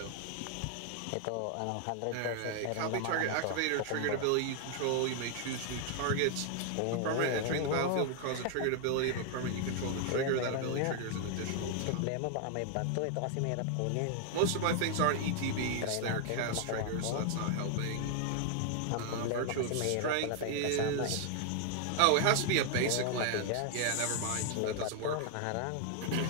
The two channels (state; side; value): different; both; correlation 0.00